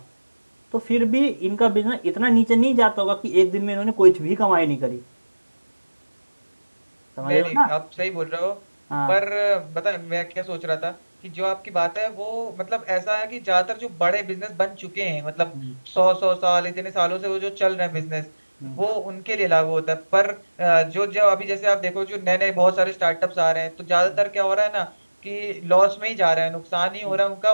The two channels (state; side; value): inverted; both; correlation -1.00